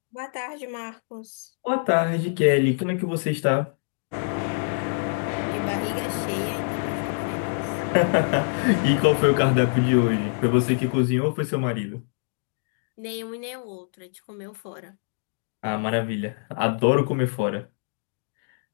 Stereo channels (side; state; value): right; silent; digital silence